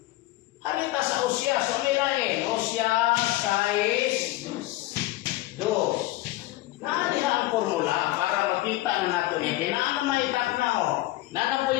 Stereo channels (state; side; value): quieter; right; 17.6 dB